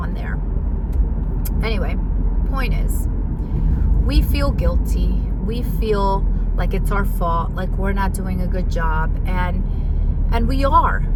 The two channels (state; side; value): identical; both; correlation 1.00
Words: there. Anyway, point is, we feel guilty. We feel like it's our fault, like we're not doing a good job. And we are.